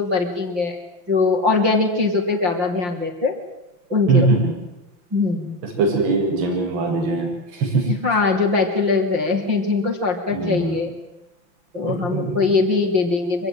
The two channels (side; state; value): left; late; 5.7 ms